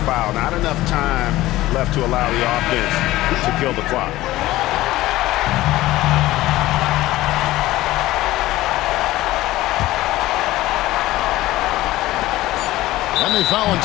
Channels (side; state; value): right; quieter; 16.8 dB